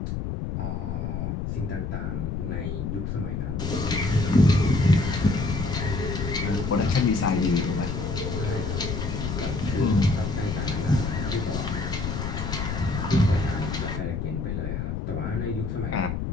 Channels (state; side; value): noise; left; rumble, 3 dB below the sound